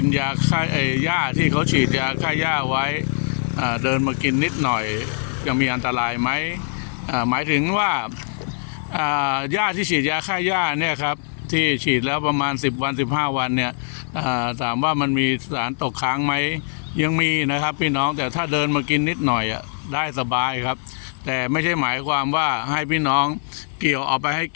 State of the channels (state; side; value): silent; right; 59 dB below the other